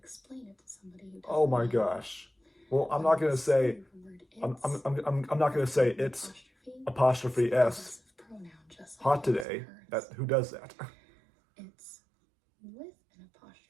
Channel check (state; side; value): drops out; left; at 9.5 s